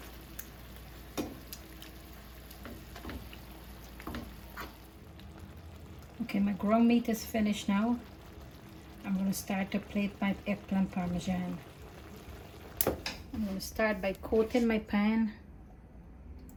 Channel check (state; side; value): identical; both; correlation 1.00